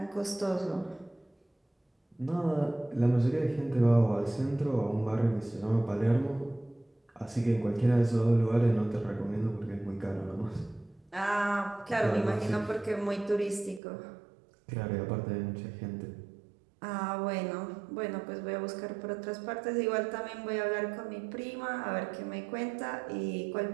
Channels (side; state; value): left; drops out; at 13.8 s